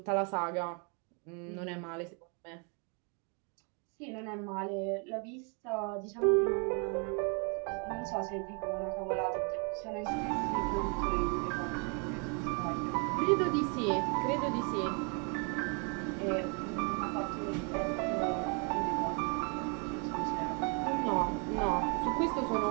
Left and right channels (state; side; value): quieter; left; 36.4 dB